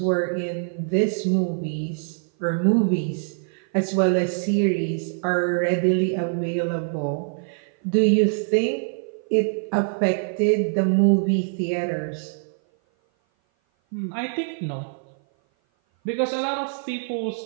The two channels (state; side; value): silent; left; 57 dB below the other